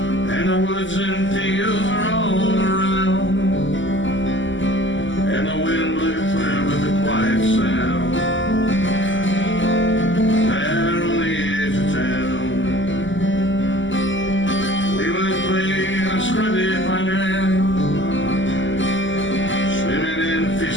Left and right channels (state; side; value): late; right; 0.55 ms